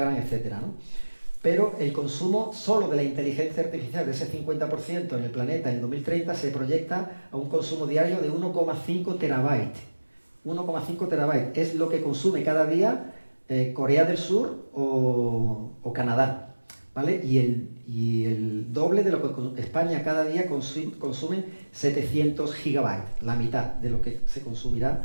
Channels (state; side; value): inverted; both; correlation -1.00